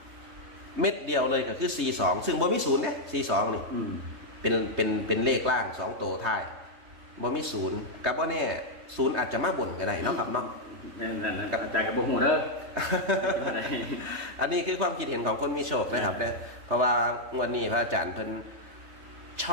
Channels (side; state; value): left; late; 3.2 ms